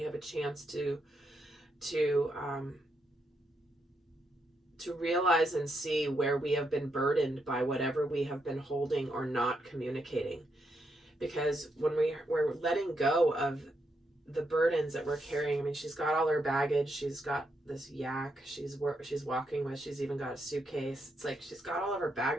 have a chance to realize and see where we have been burdened by whatever we have been holding or not communicating. Because when we're letting go of the burdens that we're carrying, I mean, she's got all her baggage. She's got this yak she's walking with. She's even got a suitcase. It's like she's got all of her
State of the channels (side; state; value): both; normal; correlation 0.80